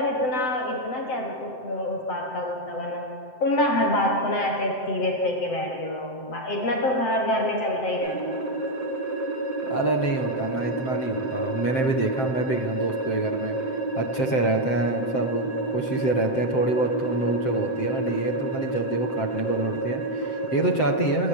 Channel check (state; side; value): late; right; 7.7 ms